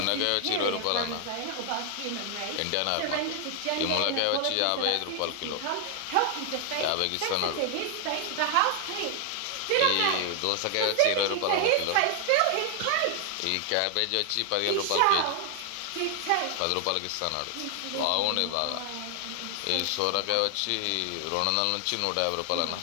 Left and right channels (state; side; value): different; both; correlation 0.00